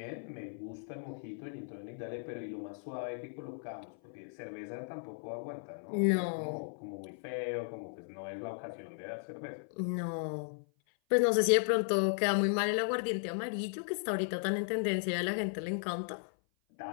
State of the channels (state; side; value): silent; right; 54 dB below the other